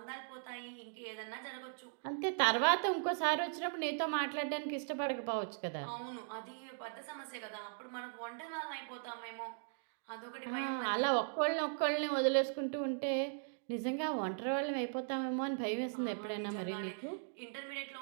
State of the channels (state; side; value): silent; left; digital silence